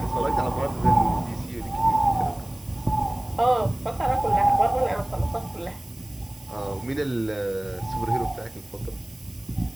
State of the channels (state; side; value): noise; right; hiss, 25 dB below the sound